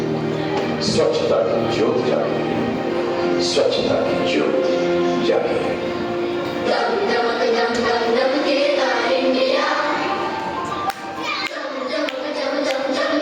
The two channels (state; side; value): identical; both; correlation 1.00